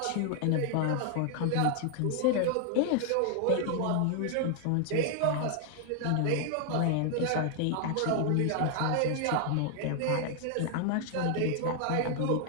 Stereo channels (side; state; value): both; different; correlation 0.00